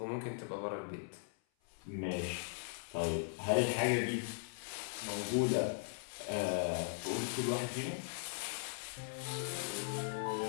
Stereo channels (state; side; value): silent; right; 52 dB below the other